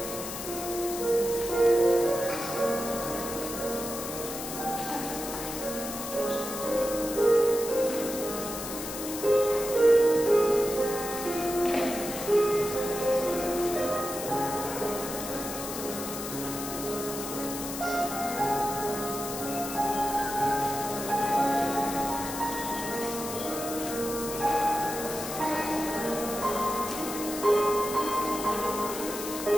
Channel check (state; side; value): noise; left; hiss, 7 dB below the sound